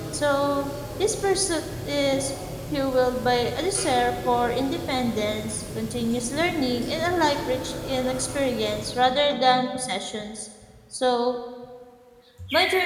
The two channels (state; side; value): identical; both; correlation 1.00